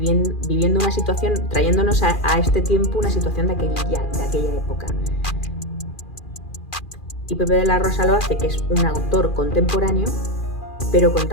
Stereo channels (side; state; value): right; late; 2.4 ms